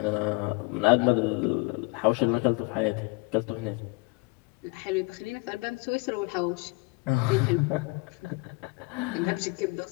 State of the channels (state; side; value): quieter; right; 26.8 dB